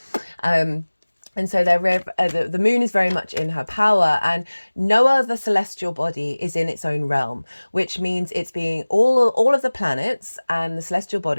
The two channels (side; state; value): both; inverted; correlation -1.00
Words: And so the moon is very much in her power, and no other celestial body is in its own realm, which means it's being all of the planets and the celestial